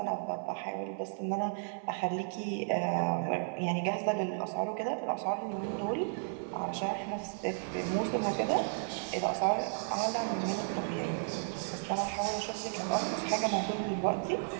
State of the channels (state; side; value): silent; left; 55 dB below the other